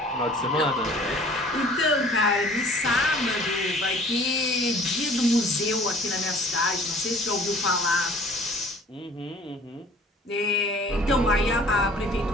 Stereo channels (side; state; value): both; normal; correlation 0.51